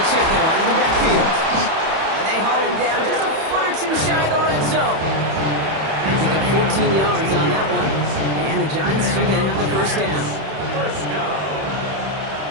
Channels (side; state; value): left; late; 31 ms